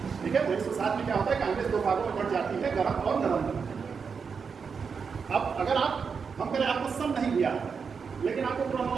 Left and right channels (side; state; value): left; quieter; 5.8 dB